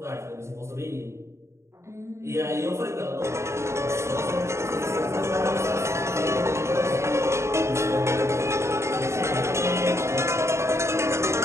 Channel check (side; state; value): left; late; 0.13 ms